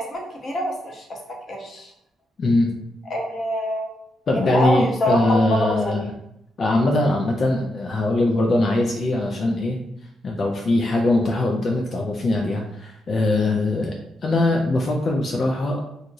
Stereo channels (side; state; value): both; normal; correlation 0.84